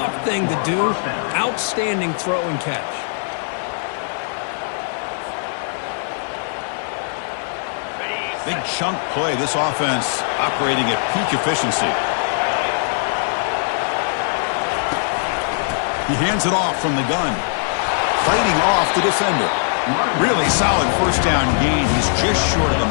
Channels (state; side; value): silent; right; 55 dB below the other